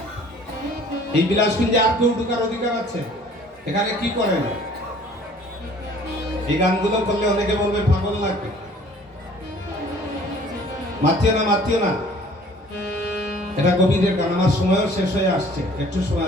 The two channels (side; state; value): both; normal; correlation 0.53